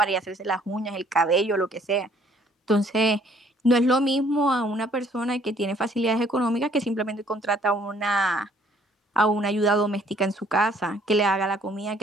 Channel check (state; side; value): normal; both; correlation 0.61